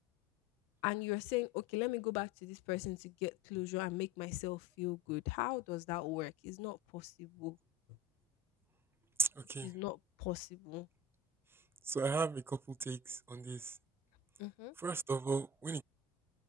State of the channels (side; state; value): right; quieter; 3.3 dB